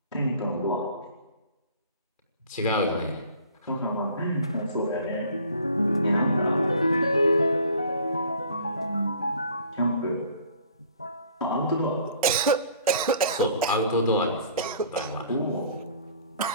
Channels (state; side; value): inverted; both; correlation -0.51